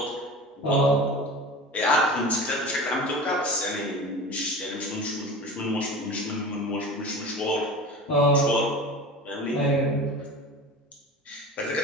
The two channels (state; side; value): normal; both; correlation 0.34